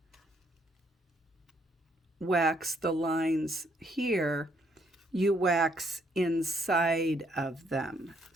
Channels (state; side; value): normal; both; correlation 0.70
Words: wax the lines here, you wax inside of them.